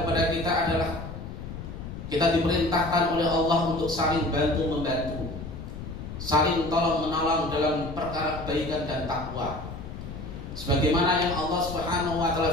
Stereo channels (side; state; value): left; noise; rumble, 9 dB below the sound